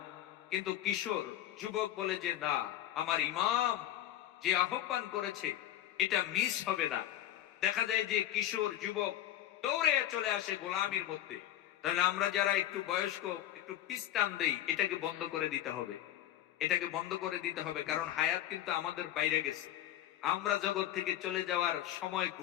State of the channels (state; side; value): quieter; right; 12.6 dB